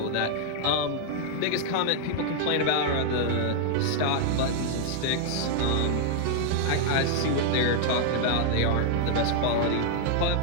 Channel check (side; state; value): both; different; correlation 0.00